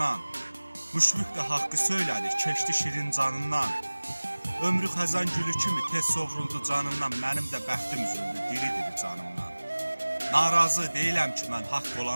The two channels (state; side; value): inverted; both; correlation -1.00